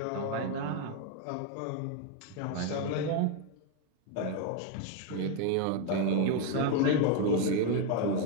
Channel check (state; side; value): different; both; correlation 0.01